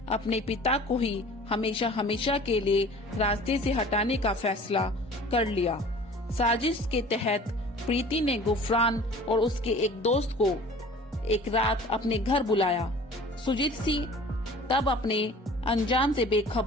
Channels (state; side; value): normal; both; correlation 0.46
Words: अपने पिता को ही हमेशा हमेशा के लिए रास्ते से हटाने का फैसला कर लिया। साजिश के तहत प्रीति ने गुफरान और उसके एक दोस्त को एक रात अपने घर बुलाया। सुजीत सिंह तब अपने अंजाम से